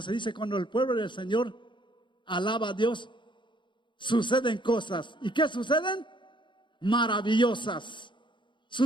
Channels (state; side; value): late; right; 0.23 ms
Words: se dice: cuando el pueblo del Señor alaba a Dios, suceden cosas. ¿Y qué suceden? Maravillosas.